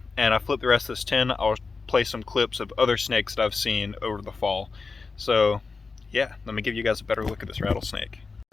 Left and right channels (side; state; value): right; quieter; 4.4 dB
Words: and I flip the rest of this tin, I'll play some clips of other snakes that I've seen over the fall. So yeah, let me give you guys a better look at this rattlesnake.